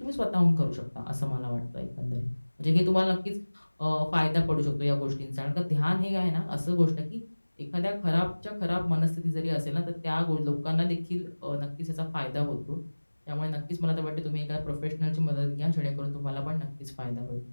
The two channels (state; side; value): inverted; both; correlation -1.00